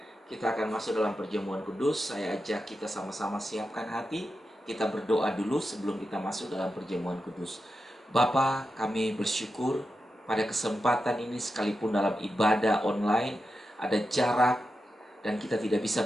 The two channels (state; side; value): normal; both; correlation 0.89